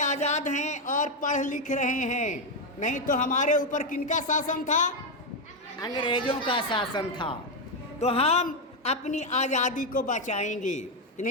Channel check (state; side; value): normal; both; correlation 0.05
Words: आज़ाद हैं और पढ़ लिख रहे हैं। नहीं तो हमारे ऊपर किनका शासन था? अंग्रेजों का शासन था। तो हम अपनी आज़ादी को बचाएंगे कि